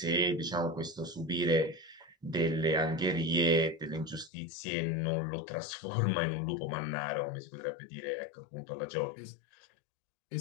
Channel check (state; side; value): drops out; right; at 4.3 s